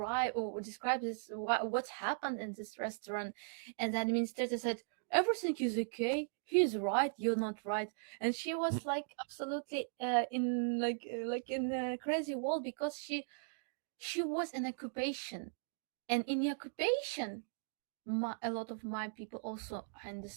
this, what happened in this restaurant. And the administrator said, everything is okay, he's right, you're not right. And she was like absolutely in like in a crazy world, because she was in occupation. And in the occupation, a lot of my people also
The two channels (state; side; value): silent; left; digital silence